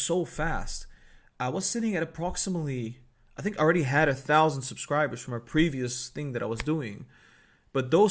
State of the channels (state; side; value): identical; both; correlation 1.00